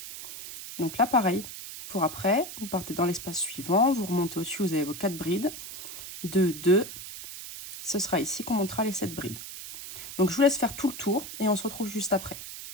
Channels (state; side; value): noise; right; hiss, 10 dB below the sound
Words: Donc là, pareil, pour après, vous partez dans l'espace suivant, vous remontez au-dessus, vous avez vos 4 brides. 2, 2, ce sera ici qu'on montera les 7 brides. Donc je vous laisse faire tout le tour et on se retrouve juste après.